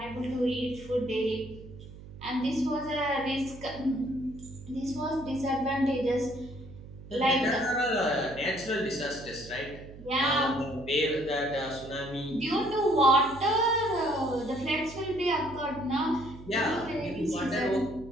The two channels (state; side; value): noise; right; hum, 16 dB below the sound